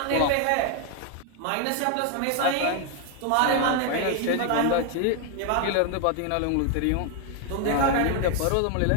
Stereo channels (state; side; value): different; both; correlation 0.01